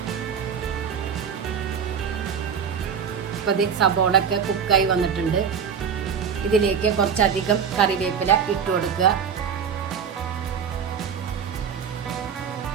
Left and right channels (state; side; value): quieter; left; 7.1 dB